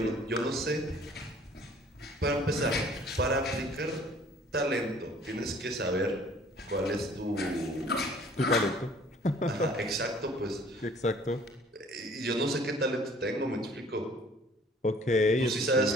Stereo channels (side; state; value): both; normal; correlation 0.54